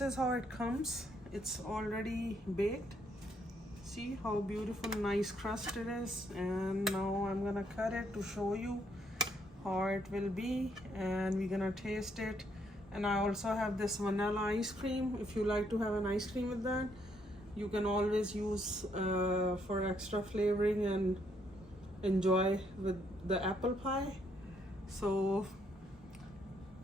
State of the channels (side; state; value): both; normal; correlation 0.72